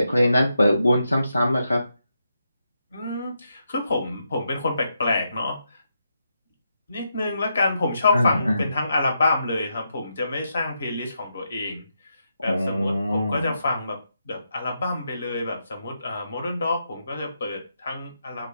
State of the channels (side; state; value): both; inverted; correlation -0.83